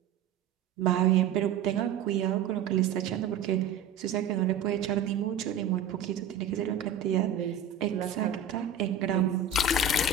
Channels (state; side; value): quieter; left; 6.3 dB